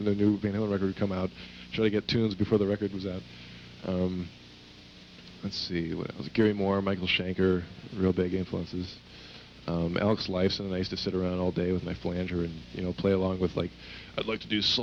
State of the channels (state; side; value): identical; both; correlation 1.00